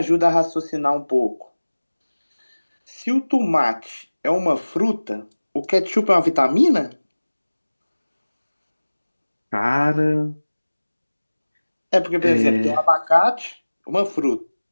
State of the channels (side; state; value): both; inverted; correlation -1.00